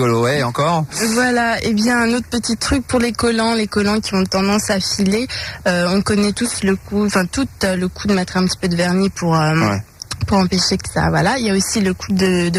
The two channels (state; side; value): identical; both; correlation 1.00